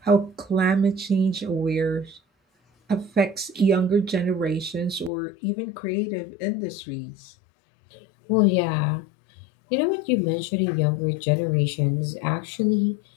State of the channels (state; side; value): drops out; right; at 5.1 s